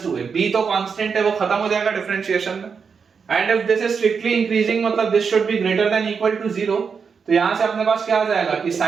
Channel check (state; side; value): quieter; left; 5.9 dB